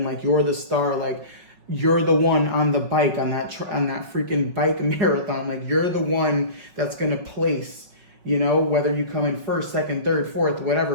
like you're the star, like you're the one on the bike, on that freaking bike marathon. Like you're the one that's going to place, you know, whether you come in first, second, third, fourth,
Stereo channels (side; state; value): left; late; 5.4 ms